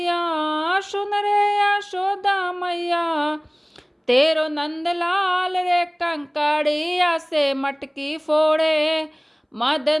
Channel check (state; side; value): identical; both; correlation 1.00